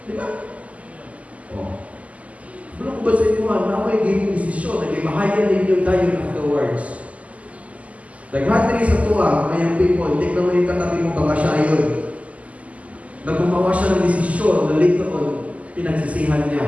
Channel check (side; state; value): left; late; 0.069 ms